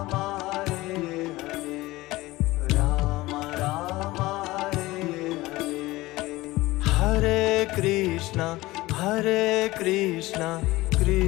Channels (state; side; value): quieter; right; 19.2 dB